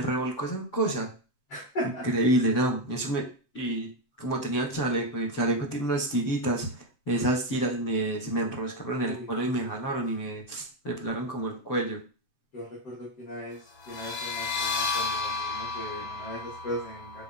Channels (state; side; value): late; right; 7.7 ms